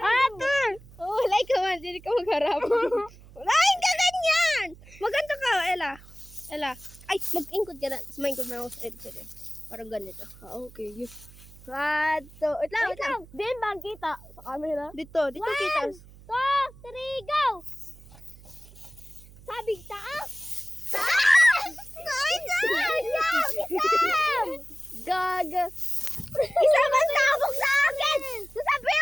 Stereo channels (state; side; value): noise; right; hum, 21 dB below the sound